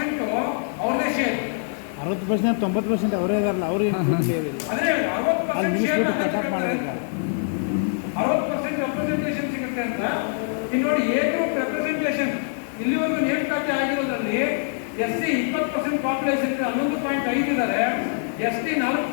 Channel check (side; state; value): right; silent; 61 dB below the other